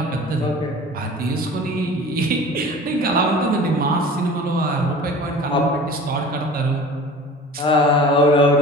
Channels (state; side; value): normal; both; correlation 0.40